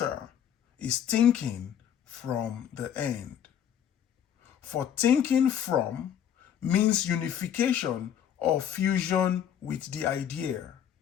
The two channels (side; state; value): right; quieter; 9.4 dB